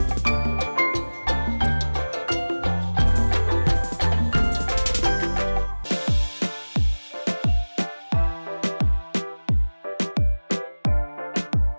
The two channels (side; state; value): both; inverted; correlation -1.00